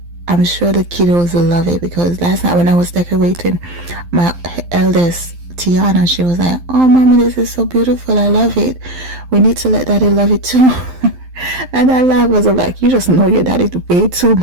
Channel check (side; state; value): left; late; 12 ms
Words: I'm sure the kiddos will love it, because last night when I was decorating, my eldest Tiana, she was like, "Oh mommy, this is so beautiful, I love it, we need to let daddy love it too." And I laughed, was like, you just know your daddy way too